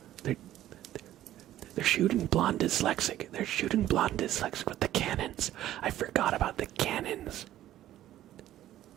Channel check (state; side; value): quieter; left; 13.2 dB